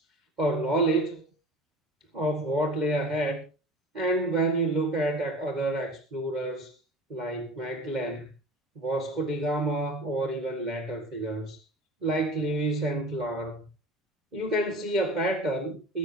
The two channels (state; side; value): normal; both; correlation 0.38